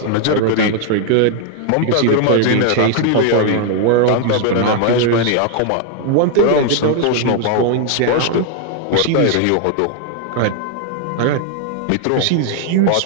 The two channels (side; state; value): both; different; correlation 0.00